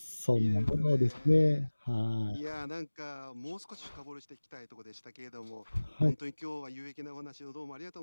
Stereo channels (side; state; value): both; inverted; correlation -1.00